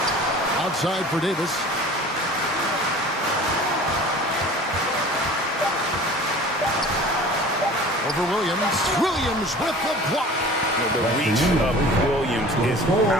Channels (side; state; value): both; normal; correlation 0.43